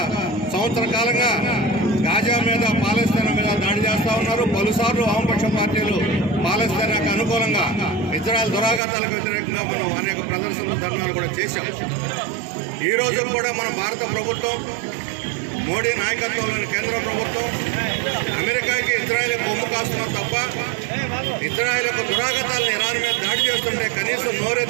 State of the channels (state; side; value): drops out; left; at 8.8 s